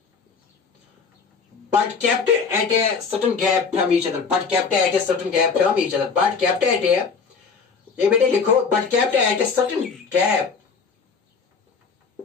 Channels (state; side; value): quieter; right; 5.3 dB